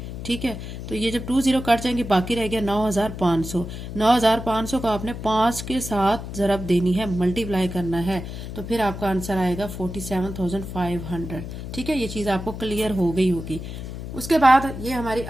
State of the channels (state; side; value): noise; left; hum, 8 dB below the sound